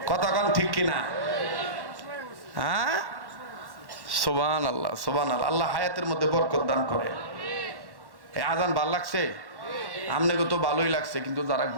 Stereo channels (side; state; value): left; late; 1.1 ms